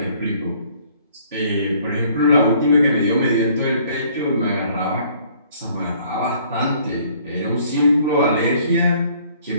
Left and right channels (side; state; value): both; inverted; correlation -0.59